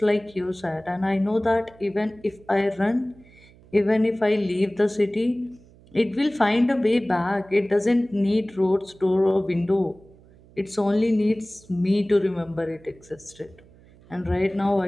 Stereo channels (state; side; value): noise; right; hum, 26 dB below the sound